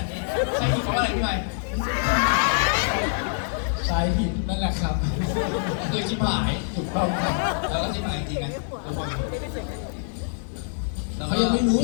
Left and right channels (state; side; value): silent; right; digital silence